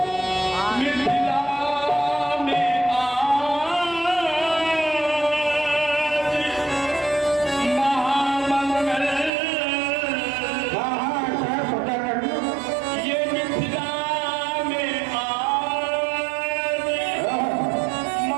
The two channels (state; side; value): drops out; left; at 9.3 s